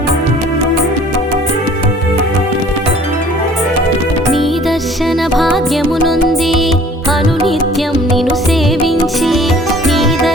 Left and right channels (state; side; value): normal; both; correlation 0.52